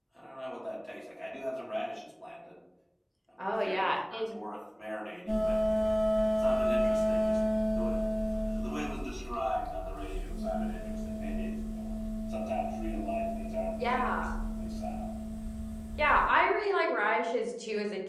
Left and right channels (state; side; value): identical; both; correlation 1.00